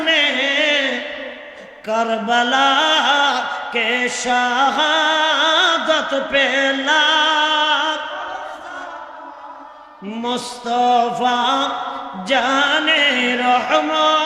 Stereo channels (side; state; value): both; identical; correlation 1.00